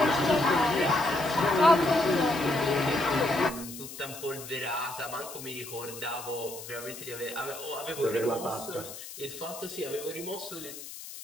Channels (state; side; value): noise; left; hiss, 12 dB below the sound